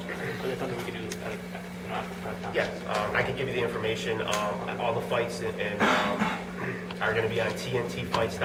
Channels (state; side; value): identical; both; correlation 1.00